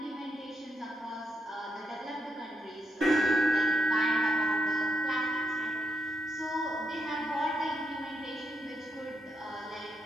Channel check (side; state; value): both; normal; correlation 0.80